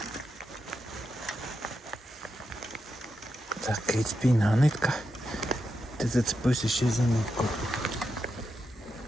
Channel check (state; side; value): normal; both; correlation 0.86